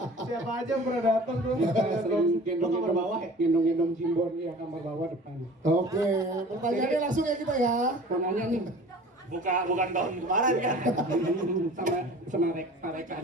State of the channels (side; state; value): both; normal; correlation 0.43